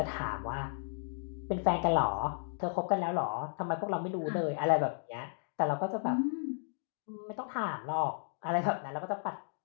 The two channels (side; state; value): right; silent; digital silence